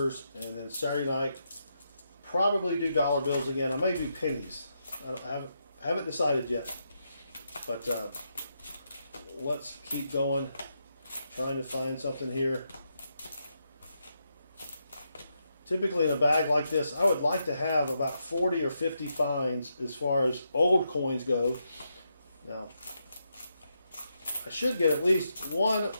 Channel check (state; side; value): inverted; both; correlation -0.82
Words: and then Saturday night probably do dollar bills again. I may do pennies. I haven't decided yet, but let's keep going, trying to find something here. Typically in a bag like this, I would like to have about 40 or 50 finds as far as old coins go. Now, I should get at least 1